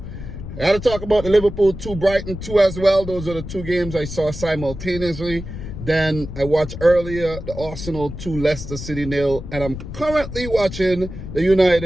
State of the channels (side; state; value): left; noise; rumble, 10 dB below the sound